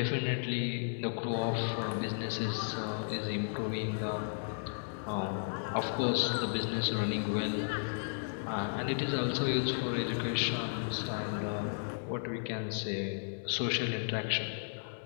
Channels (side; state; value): right; silent; digital silence